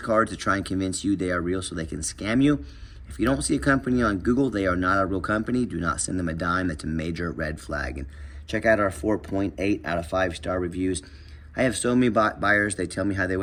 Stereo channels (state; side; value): identical; both; correlation 1.00